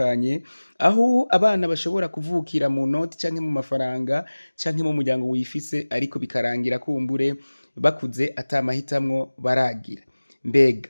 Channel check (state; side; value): inverted; both; correlation -1.00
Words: aho abana bashobora kuvukira mu noti canke mu mafaranga canke mu muryango wifise ariko bikarangira kumbure bakuze atamahitamwo baragira